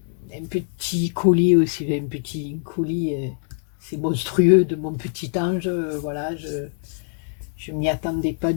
un petit colis aussi, un petit colis, c'est monstrueux, de mon petit ange. Voilà, je m'y attendais pas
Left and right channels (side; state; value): right; silent; digital silence